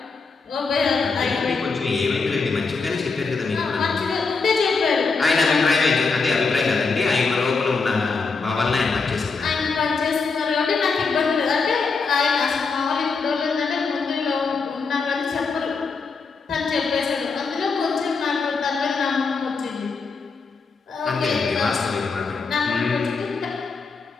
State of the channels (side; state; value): right; quieter; 4.6 dB